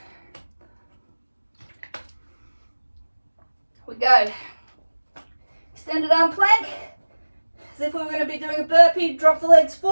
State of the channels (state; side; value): inverted; both; correlation -1.00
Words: we go. Extended arm plank, as if we were going to be doing a burpee. Drop the legs